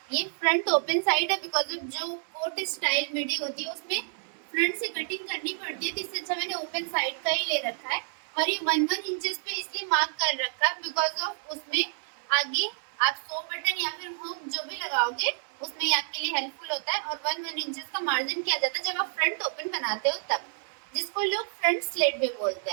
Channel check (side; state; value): left; silent; digital silence